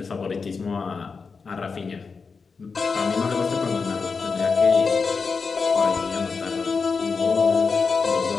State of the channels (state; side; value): quieter; right; 4.9 dB